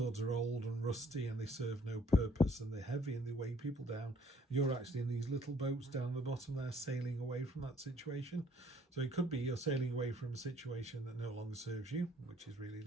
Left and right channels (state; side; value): normal; both; correlation 0.61